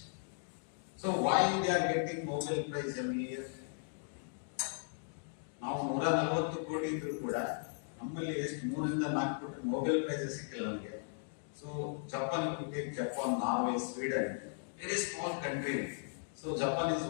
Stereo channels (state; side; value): silent; right; digital silence